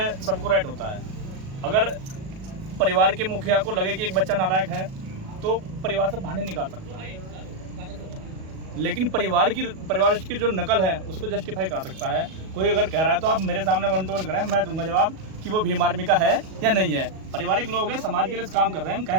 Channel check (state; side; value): late; left; 37 ms